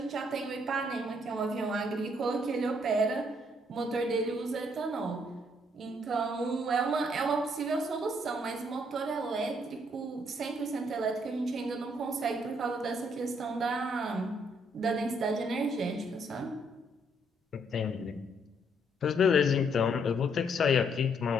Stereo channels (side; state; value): both; normal; correlation 0.70